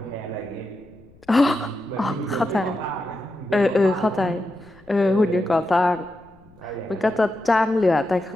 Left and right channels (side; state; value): left; noise; rumble, 28 dB below the sound